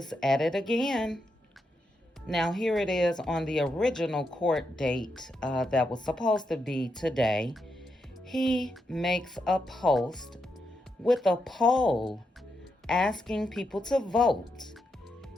at it again. Now, here it is on the original court date that was supposed to be today. He makes a post with a poll asking people to vote.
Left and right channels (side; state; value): both; normal; correlation 0.83